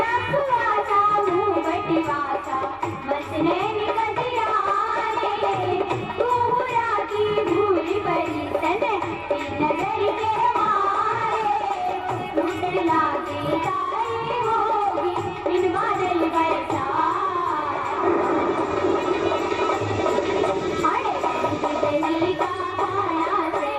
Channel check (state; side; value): identical; both; correlation 1.00